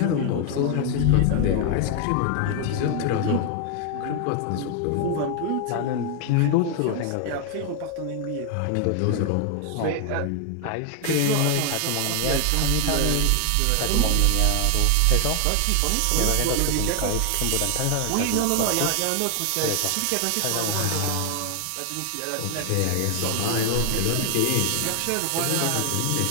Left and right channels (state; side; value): different; both; correlation 0.00